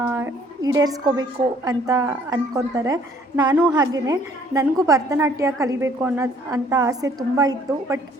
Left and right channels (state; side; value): normal; both; correlation 0.60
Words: ಈಡೇರಿಸ್ಕೋಬೇಕು ಅಂತ ಅಂದ್ಕೊತಾರೆ. ನಾನು ಹಾಗೆಯೇ, ನನಗೂ ಭರತನಾಟ್ಯ ಕಲಿಬೇಕು ಅಂತ ಆಸೆ ತುಂಬ ಇತ್ತು. ಬಟ್